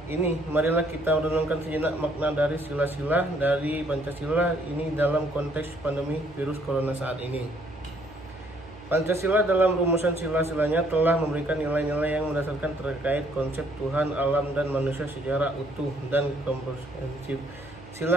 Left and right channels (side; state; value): both; normal; correlation 0.65